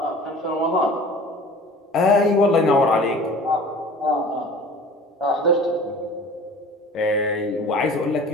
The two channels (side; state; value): both; normal; correlation 0.43